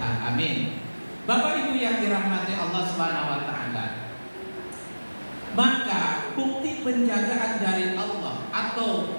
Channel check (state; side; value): inverted; both; correlation -1.00